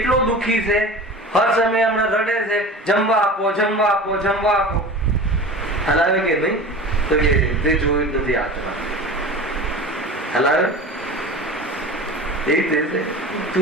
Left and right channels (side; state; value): both; normal; correlation 0.35